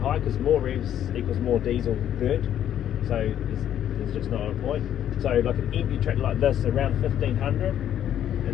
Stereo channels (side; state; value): right; quieter; 10.6 dB